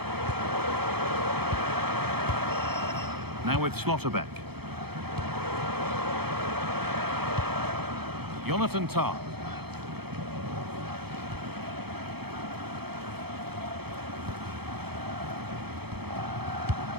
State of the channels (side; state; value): left; late; 0.97 ms